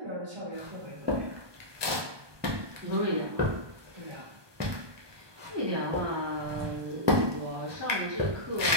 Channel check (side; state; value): left; late; 1.2 ms